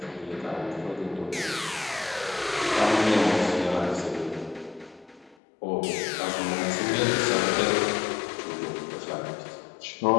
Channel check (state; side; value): drops out; right; at 5.4 s